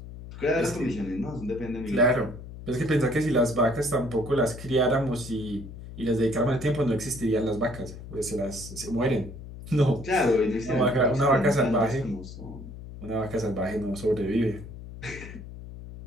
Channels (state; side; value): noise; left; hum, 13 dB below the sound